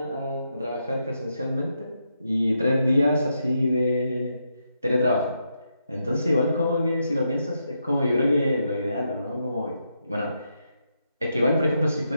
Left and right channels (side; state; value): both; inverted; correlation -0.82